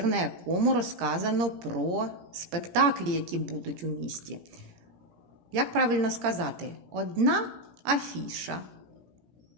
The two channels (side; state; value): left; late; 17 ms